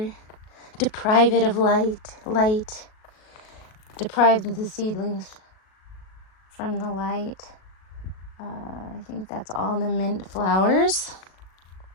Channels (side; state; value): right; late; 37 ms